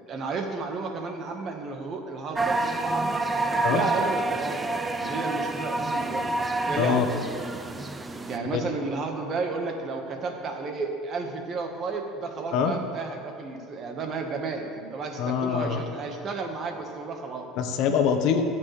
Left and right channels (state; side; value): normal; both; correlation 0.51